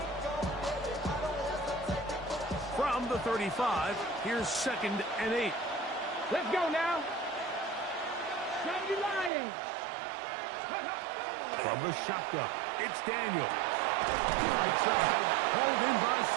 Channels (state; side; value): drops out; left; at 9.3 s